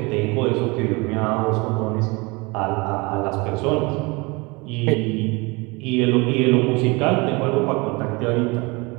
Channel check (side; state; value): left; quieter; 26.2 dB